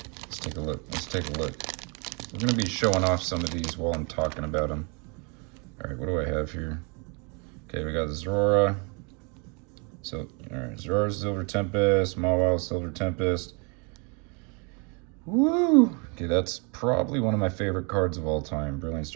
Let's take a look. We're gonna be showing off some of these while I'm talking about them. All right, what do I have here? Okay, we got Zora. So, all right, Zora Silver Tempest, Mawile Silver Tempest. Woo! Okay, that's probably one of my favorite cards of all time. Brilliant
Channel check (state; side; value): quieter; left; 33.5 dB